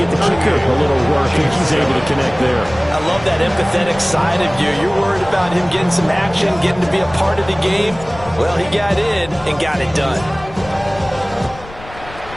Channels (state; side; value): noise; left; rumble, 17 dB below the sound